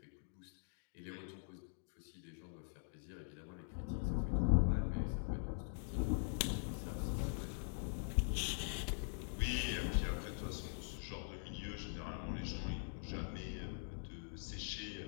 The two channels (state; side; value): silent; right; digital silence